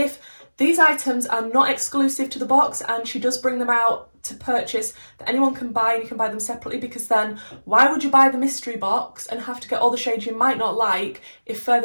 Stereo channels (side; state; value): both; inverted; correlation -1.00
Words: these items are not exclusive to the box and she does bring them out to purchase that anyone can buy, and you can buy them separately, because then why would you buy the mystery box and have to get all the shades you might not like if